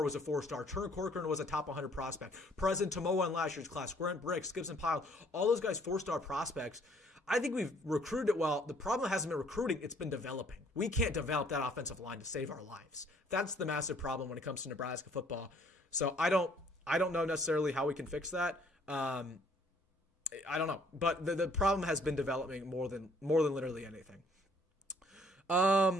was a 4-star. Turner Corcoran was a top 100 prospect. President Tomoa in last year's class. Grant Bricks, Gibson Pyle, all those guys 4-star prospects. I think we've recruited it well. The problem hasn't been recruiting, it's been developing. We can't develop that offensive line to save our lives. That's the massive problem when it comes to Nebraska football. So I don't know necessarily how we can fix that. I don't know, but the problem has been developing more than literally anything.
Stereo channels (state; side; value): normal; both; correlation 0.61